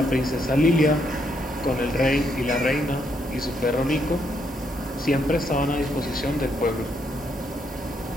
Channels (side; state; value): both; normal; correlation 0.75